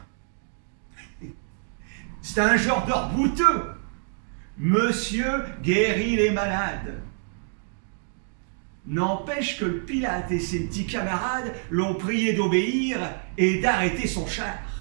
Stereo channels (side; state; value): left; silent; 61 dB below the other